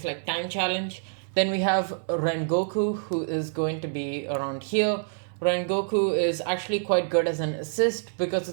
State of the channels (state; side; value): silent; left; 60 dB below the other